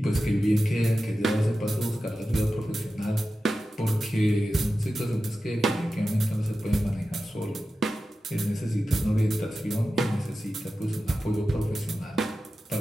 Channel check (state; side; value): normal; both; correlation 0.93